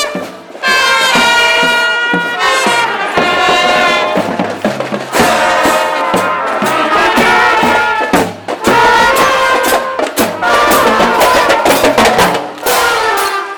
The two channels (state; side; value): identical; both; correlation 1.00